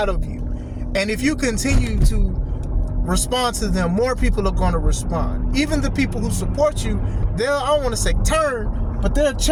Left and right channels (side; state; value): both; identical; correlation 1.00